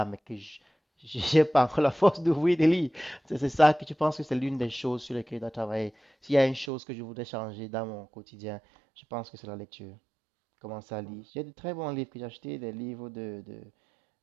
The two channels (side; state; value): left; drops out; at 6.7 s